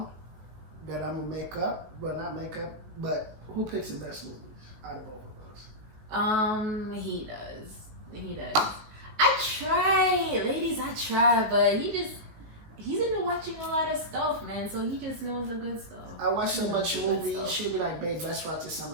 that I'm gonna make up. Well, not make up, but who picks the best movies out of both of those? He does. He does. I try, ladies. I try, but he's into watching a lot of stuff, man. So he just knows the good stuff. I watch so much movies. She'll be like, "Babe, let's watch this." I'm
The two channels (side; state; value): left; late; 19 ms